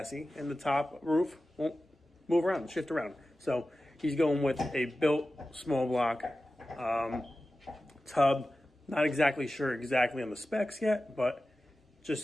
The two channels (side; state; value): both; normal; correlation 0.94